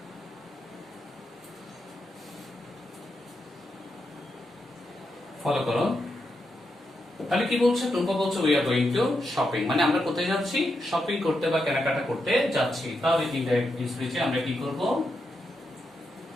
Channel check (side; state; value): both; normal; correlation 0.84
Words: Follow করো। তাহলে কি বলছে, টুম্পা বলছে we are going to shopping, মানে আমরা কোথায় যাচ্ছি, শপিং করতে বা কেনাকাটা করতে যাচ্ছি। তাহলে ইনডাইরেক্ট স্পিচে আমরা কি করব,